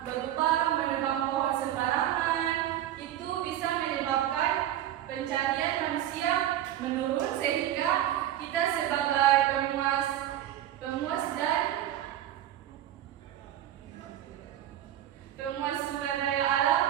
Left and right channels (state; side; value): quieter; left; 12.2 dB